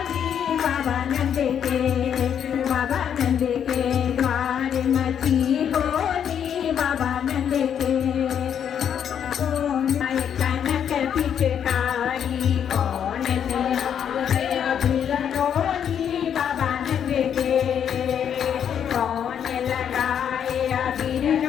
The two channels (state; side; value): quieter; right; 8.6 dB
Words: बाबा नंद के बाबा नंद के द्वार मची होली बाबा नंद के कनक पिचकारी कौन अबीर रोली बाबा नंद के कौन लगाए अबीर